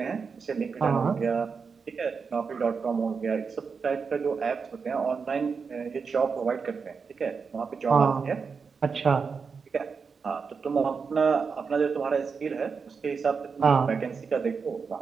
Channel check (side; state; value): left; quieter; 5.4 dB